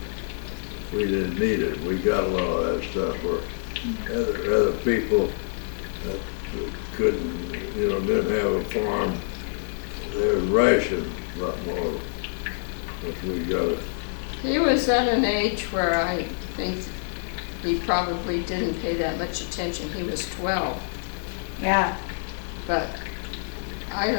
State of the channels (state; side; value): silent; right; digital silence